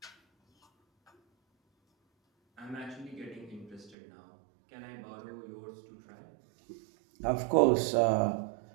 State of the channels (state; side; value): drops out; left; at 4.0 s